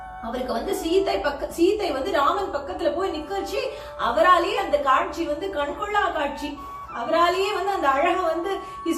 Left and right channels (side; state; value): both; identical; correlation 1.00